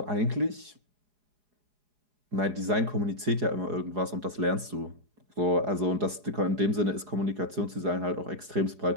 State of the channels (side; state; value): left; late; 4.8 ms